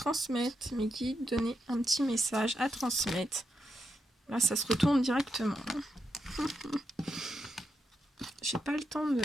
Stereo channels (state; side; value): normal; both; correlation 0.84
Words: Mes guides, donnez un petit message à transmettre. Là, ça se retourne directement. J'ai pas le temps